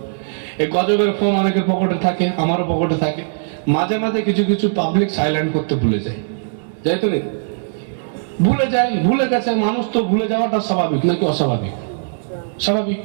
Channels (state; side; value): silent; left; digital silence